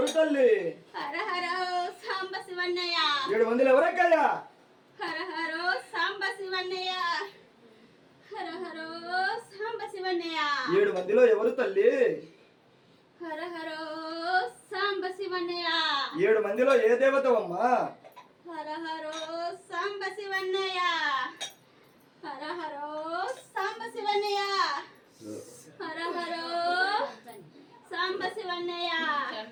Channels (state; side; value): identical; both; correlation 1.00